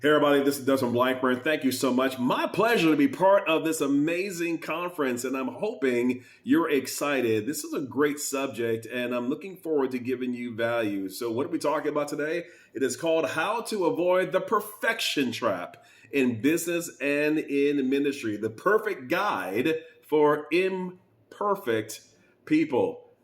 Hey everybody, this is Desmond Blackburn. Thank you so much. My pleasure to be part of this amazing conference, and I'm hoping you're excited. This is a great subject, and I'm looking forward to giving you value. So what are we talking about today? It is called How to Avoid the Perfection Trap in Business and in Ministry, the perfect guide for imperfect people.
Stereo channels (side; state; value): both; identical; correlation 1.00